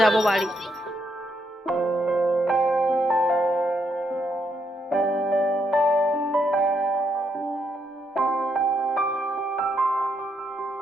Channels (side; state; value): both; normal; correlation 0.77